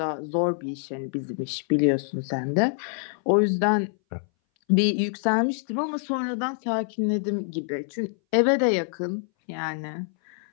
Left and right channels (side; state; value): right; silent; 59 dB below the other